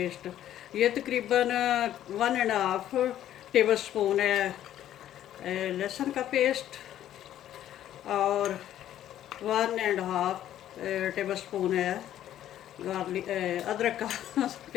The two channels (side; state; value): right; quieter; 11.8 dB